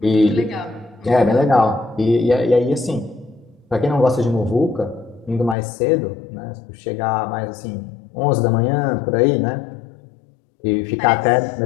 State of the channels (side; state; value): right; drops out; at 5.6 s